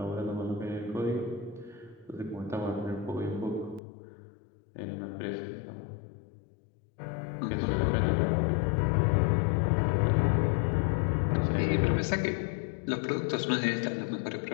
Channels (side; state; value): right; drops out; at 3.8 s